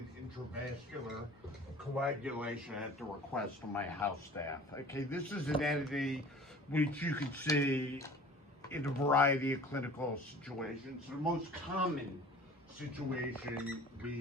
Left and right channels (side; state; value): both; normal; correlation 0.45